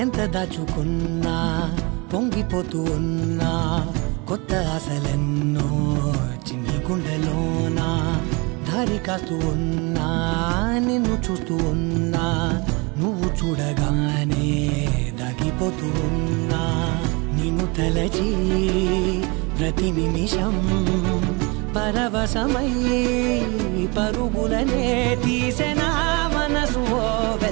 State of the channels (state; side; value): quieter; left; 28.3 dB